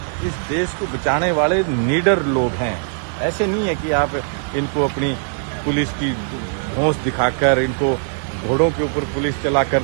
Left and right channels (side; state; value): left; silent; 66 dB below the other